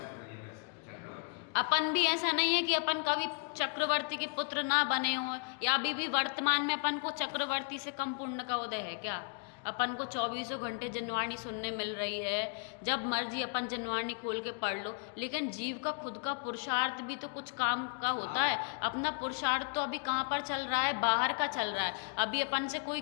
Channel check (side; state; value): right; quieter; 38.3 dB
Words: अपन भी ऐसा नहीं है कि अपन कभी चक्रवर्ती के पुत्र ना बने हो, या अभी भी वर्तमान में अपन को चक्रवर्ती से कम पुण्य का उदय है क्या? अपन को 24 घंटे जनवाणी सुनने मिल रही है, जब मर्जी अपन जनवाणी खोल के पढ़ लो, लेकिन जीव का खुद का पुरुषार्थ भी तो कुछ काम का होता है। अपना पुरुषार्थ तो अभी कहाँ पर चल रहा है, बाहर का चल रहा है। अभी अपन से कोई